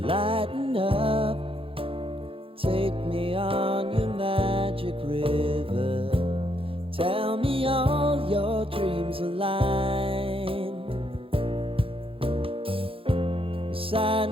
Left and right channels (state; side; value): late; left; 0.27 ms